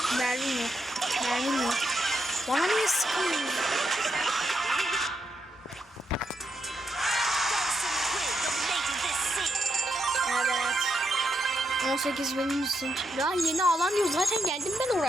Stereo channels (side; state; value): both; normal; correlation 0.82